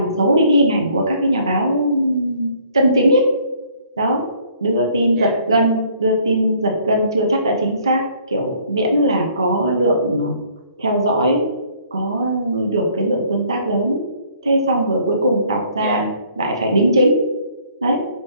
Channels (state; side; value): inverted; both; correlation -0.61